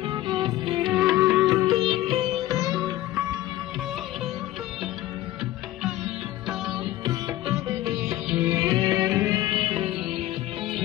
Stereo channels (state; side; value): quieter; right; 15.4 dB